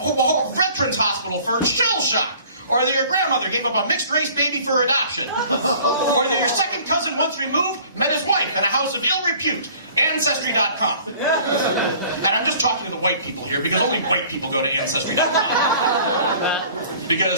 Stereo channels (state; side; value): inverted; both; correlation -0.50